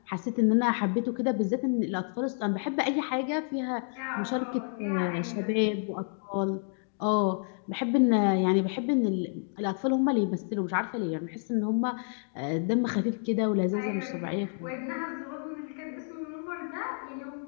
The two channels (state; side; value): silent; right; 58 dB below the other